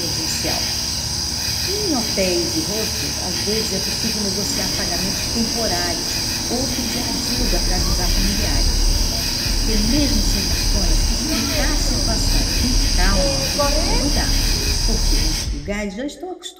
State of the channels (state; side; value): identical; both; correlation 1.00